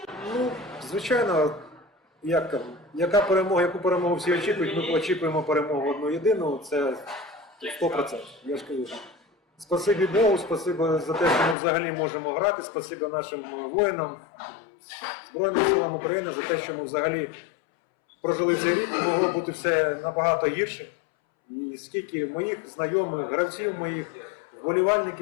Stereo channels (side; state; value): right; drops out; at 11.6 s